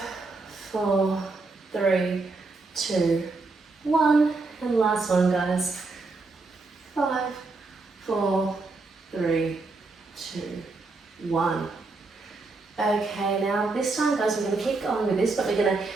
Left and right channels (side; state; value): left; quieter; 3.7 dB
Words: 4, 3, 2, 1, and last one guys. 5, 4, 3, 2, 1. Okay, now this time guys, we're going to keep going with this, but we're going to